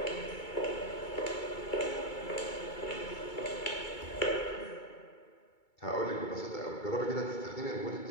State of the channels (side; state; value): right; late; 2.3 ms